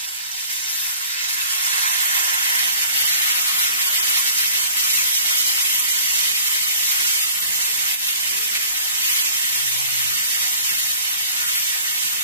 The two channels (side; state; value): both; inverted; correlation -0.47